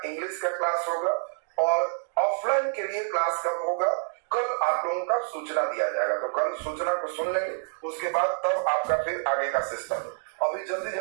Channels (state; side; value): silent; left; 60 dB below the other